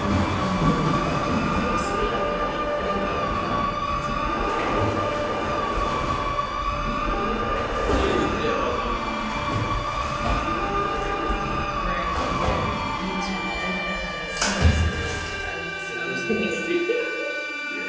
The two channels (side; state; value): both; identical; correlation 1.00